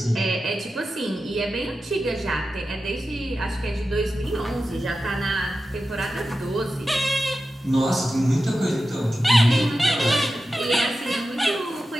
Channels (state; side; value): normal; both; correlation 0.92